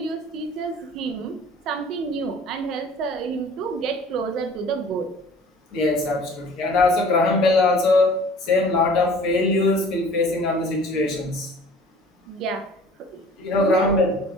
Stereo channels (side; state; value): both; normal; correlation 0.48